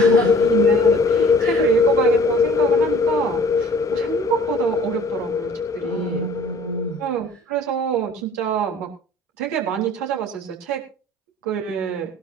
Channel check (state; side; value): normal; both; correlation 0.51